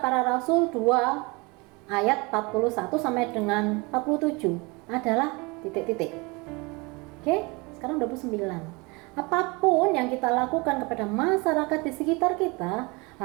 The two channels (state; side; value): quieter; left; 27.0 dB